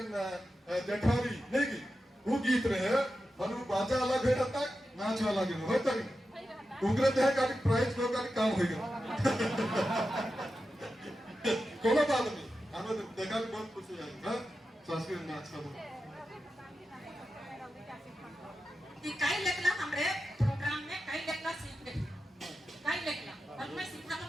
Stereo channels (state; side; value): normal; both; correlation 0.91